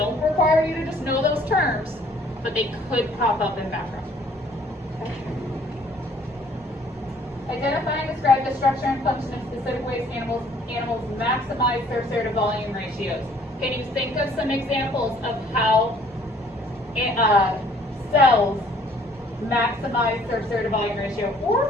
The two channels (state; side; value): normal; both; correlation 0.59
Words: require you to just know those terms, but they could pop up in background. Okay. Identify and describe the structure and function of specific ways animals maximize surface area to volume ratios. Can you think of some examples of how cells maximize surface area to volume ratio,